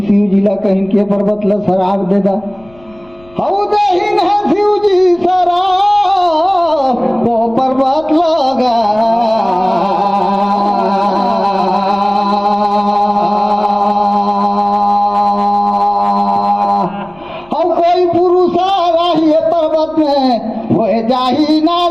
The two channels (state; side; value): noise; left; rumble, 28 dB below the sound